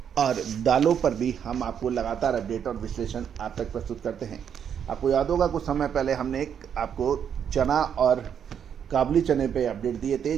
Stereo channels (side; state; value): left; quieter; 8.2 dB